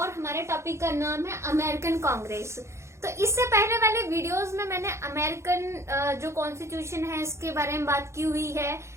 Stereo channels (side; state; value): left; late; 0.13 ms